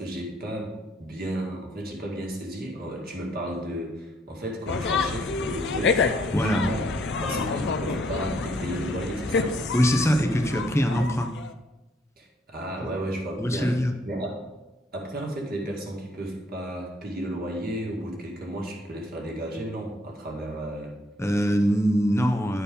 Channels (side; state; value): both; normal; correlation 0.69